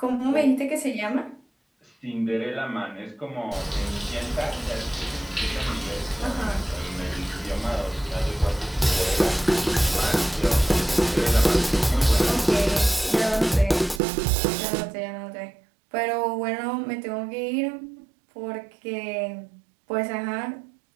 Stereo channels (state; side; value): drops out; left; at 14.0 s